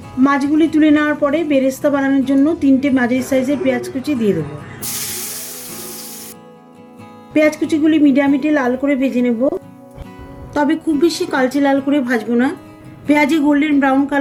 মাছগুলি তুলে নেওয়ার পরে বেরেস্তা বানানোর জন্য 3টে মাঝারি সাইজের পেঁয়াজ কুচি দিয়ে দেবো। পেঁয়াজ কুচিগুলি মিডিয়াম হিটে লাল করে ভেজে নেব, তবে খুব বেশি কালচে লাল করে ভাজবো না। পেঁয়াজে গোল্ডেন ব্রাউন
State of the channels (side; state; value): both; identical; correlation 1.00